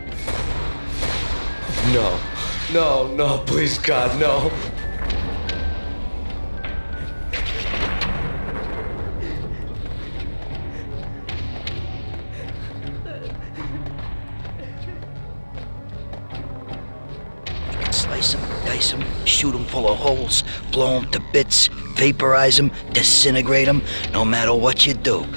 No. No, no, please, God, no. Slice 'em, dice 'em, shoot 'em full of holes, blow 'em to bits, vaporize 'em, disintegrate 'em. No matter what you do,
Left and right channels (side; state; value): both; inverted; correlation -1.00